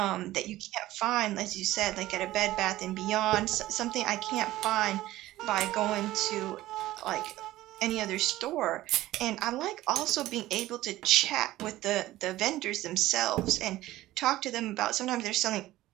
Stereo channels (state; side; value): quieter; left; 16.0 dB